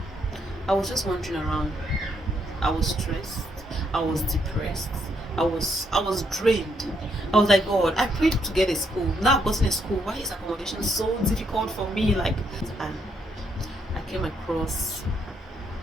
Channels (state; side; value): normal; both; correlation 0.75